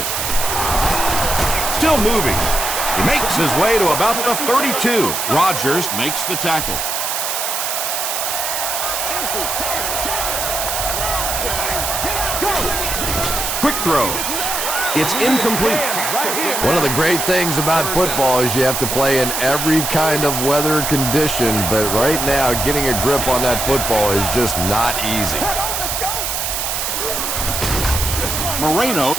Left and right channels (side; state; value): right; noise; hiss, 1 dB below the sound